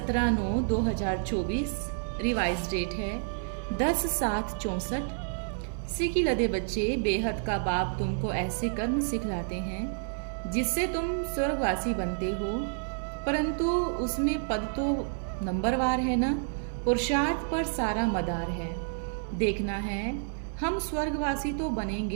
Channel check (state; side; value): silent; left; digital silence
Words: रिवाइज डेट है 10/7/64। सीखी लदे बच्चे, बेहद का बाप तुमको ऐसे कर्म सिखलाते हैं जिससे तुम स्वर्गवासी बनते हो, परंतु उसमें पद तो नंबरवार है ना। पुरुषार्थ पर सारा मदार है। देखना है हम स्वर्गवासी तो